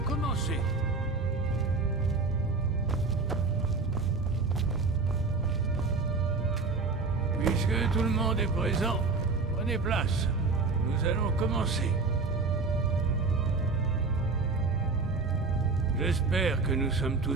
commencer. Puisque tout le monde est présent, prenez place. Nous allons commencer. J'espère que nous sommes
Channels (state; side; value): quieter; left; 4.0 dB